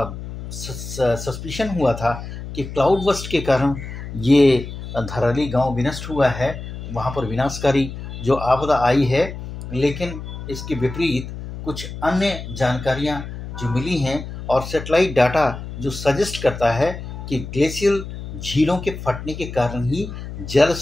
सस्पिशन हुआ था कि क्लाउड बस्ट के कारण ये धराली गांव विनष्ट हुआ है, वहाँ पर विनाशकारी जो आपदा आई है। लेकिन इसके विपरीत कुछ अन्य जानकारियाँ जो मिली हैं और सैटेलाइट डाटा जो सजेस्ट करता है कि ग्लेशियल झीलों के फटने के कारण ही जल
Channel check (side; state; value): left; noise; hum, 10 dB below the sound